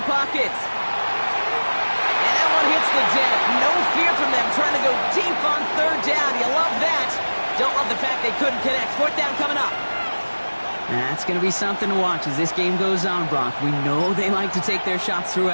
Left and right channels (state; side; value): inverted; both; correlation -1.00